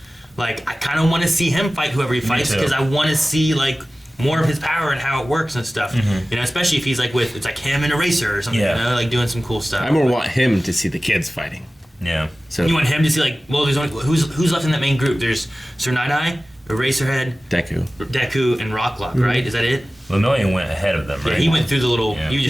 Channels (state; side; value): normal; both; correlation 0.96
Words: like, I kind of want to see him fight whoever he fights because I want to see, like, more of his power and how it works and stuff. You know, especially if he's, like, it's like him and a racer or something, you know, like, doing some cool stuff. I more want him to see the kids fighting. Yeah. So You want him to see, like, well, there's only, who's left in that main group? There's Sir Night-Eye, Eraserhead, Deku, and Rock Lock, right? Is that it? Lemillion went ahead of them, right? Yeah, he went through the little, Yeah. you